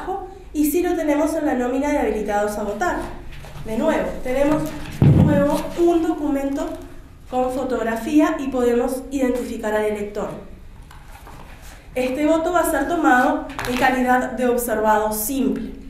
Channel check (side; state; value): both; identical; correlation 1.00